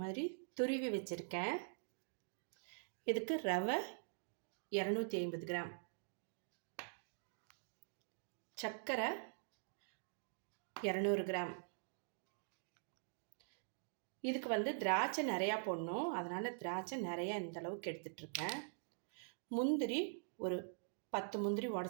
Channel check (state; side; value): silent; left; digital silence